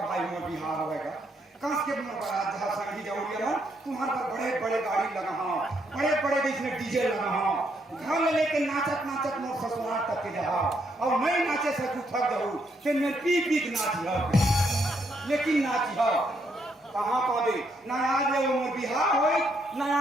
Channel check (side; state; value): both; normal; correlation 0.75